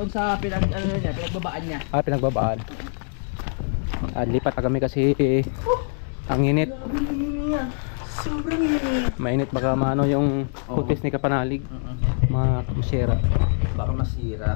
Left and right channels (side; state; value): right; silent; 63 dB below the other